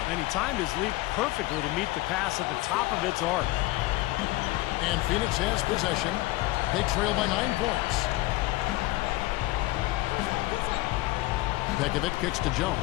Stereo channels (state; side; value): quieter; right; 19.0 dB